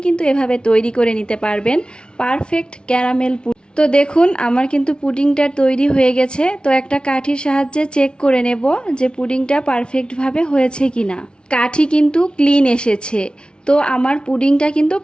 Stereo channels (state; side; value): late; right; 0.056 ms